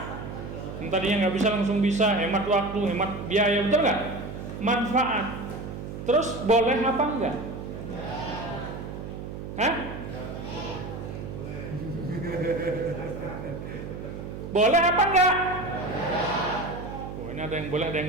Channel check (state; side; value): noise; right; hum, 8 dB below the sound